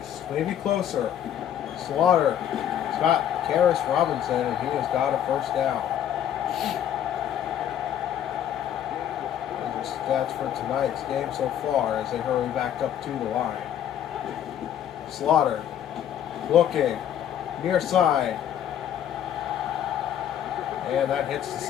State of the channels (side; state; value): right; quieter; 10.2 dB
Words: maybe closer. Slaughter, Scott Karras Robinson, and he has got a first down. Those are stats for tonight's game so far as they hurry back up to the line. Slaughter, looking, near side. And that hits the